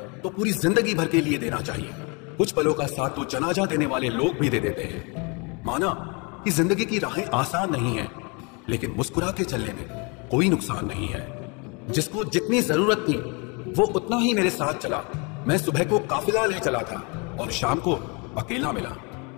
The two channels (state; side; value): quieter; right; 31.5 dB